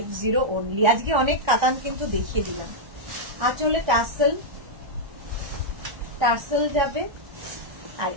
only. আজকে অনেক কাতান কিন্তু দেখিয়ে দিলাম। আঁচলে টাসেল, টাসেল যাবে, আর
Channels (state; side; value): late; left; 1.3 ms